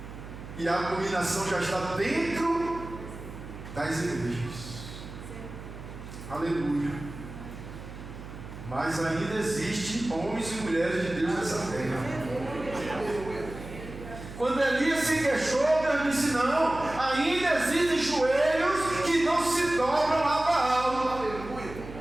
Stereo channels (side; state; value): right; noise; hum, 12 dB below the sound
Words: e a abominação já está dentro das igrejas. Aleluia. Mas ainda existem homens e mulheres de Deus nessa terra. Quando Elias se queixou, Deus disse: não, ainda existem joelhos que não se dobram a Baal.